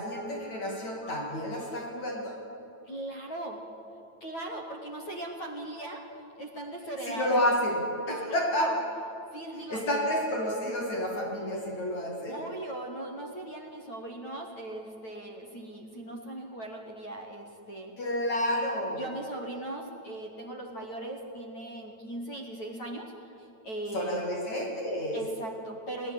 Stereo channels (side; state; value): right; late; 9.1 ms